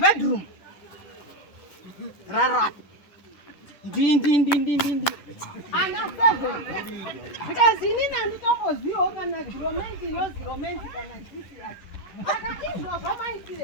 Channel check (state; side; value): late; right; 10 ms